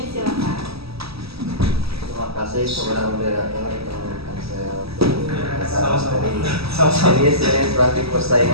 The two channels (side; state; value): left; late; 0.77 ms